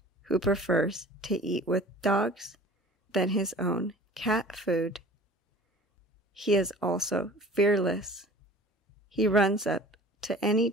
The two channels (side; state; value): both; normal; correlation 0.44